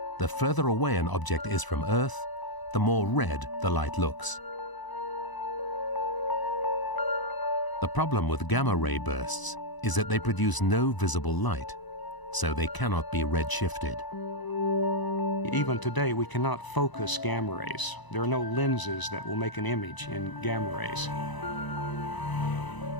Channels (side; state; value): right; late; 1.0 ms